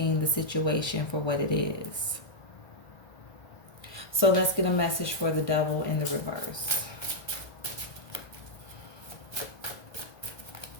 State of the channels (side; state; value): right; late; 1.2 ms